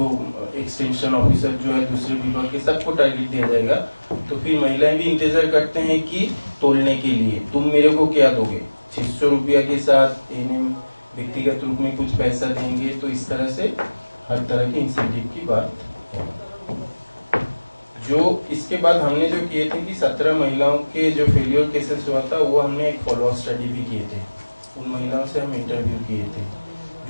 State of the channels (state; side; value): inverted; both; correlation -1.00